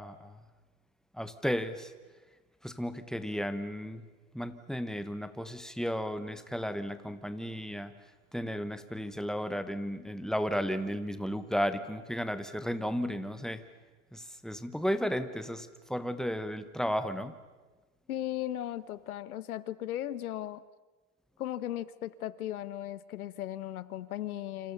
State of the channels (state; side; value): normal; both; correlation 0.80